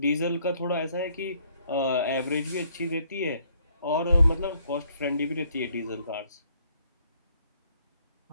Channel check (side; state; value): both; inverted; correlation -0.66